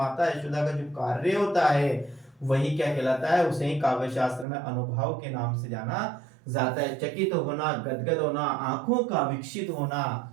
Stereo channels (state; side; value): drops out; left; at 4.5 s